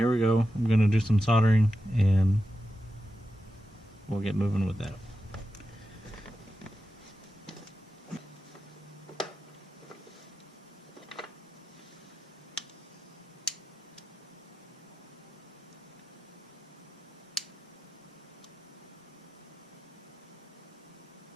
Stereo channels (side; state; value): both; normal; correlation 0.91